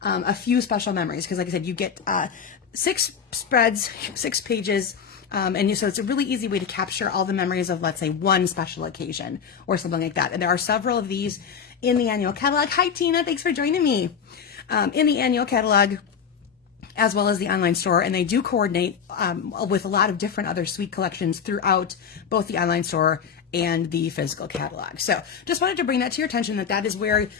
a few special memories. Because like I said, you get 6 spreads, 6 pages. So it's a really easy way to capture all the memories of, let's say, one special occasion or something like that. And there are several of these in the annual catalog. Hi, Tina. Thanks for joining me. In the annual catalog, as well as the online store, and they do coordinate with a lot of different other sweet collections throughout both the online store and the physical catalog. So just wanted to bring that to your attention, that is where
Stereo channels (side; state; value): right; quieter; 7.0 dB